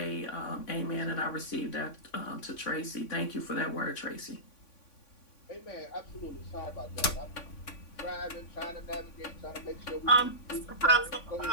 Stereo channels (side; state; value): right; late; 3.5 ms